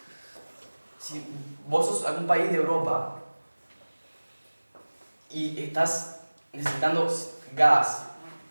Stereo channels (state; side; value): inverted; both; correlation -1.00